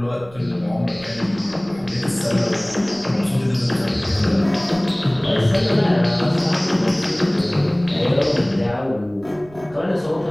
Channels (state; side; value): noise; right; rumble, 23 dB below the sound